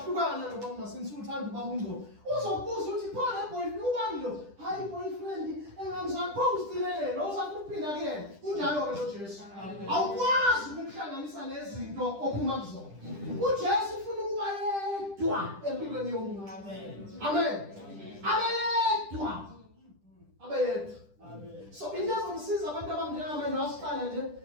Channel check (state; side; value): late; left; 10 ms